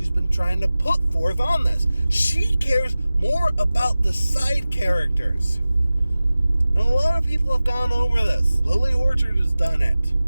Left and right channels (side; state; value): both; inverted; correlation -0.96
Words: been trying to put forth on this. She cares more about the side characters. And a lot of people have gone over this. Lily Orchard has done it.